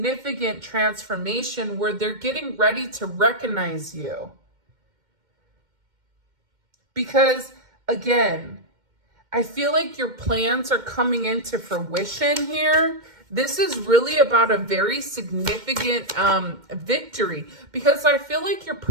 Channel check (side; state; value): left; late; 2.1 ms